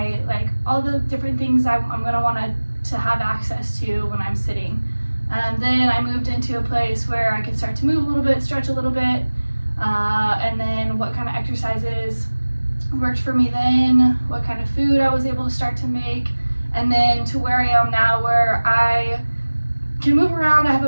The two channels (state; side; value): inverted; both; correlation -1.00